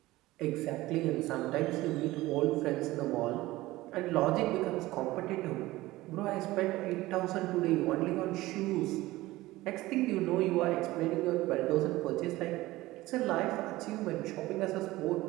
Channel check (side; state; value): left; quieter; 18.2 dB